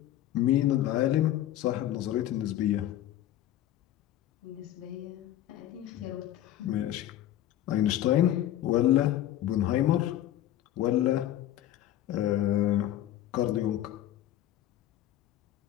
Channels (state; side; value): quieter; right; 12.7 dB